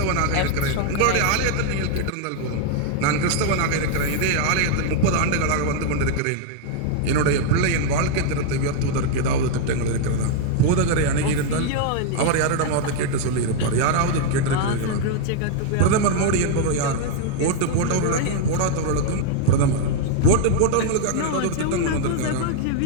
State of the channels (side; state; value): both; different; correlation 0.00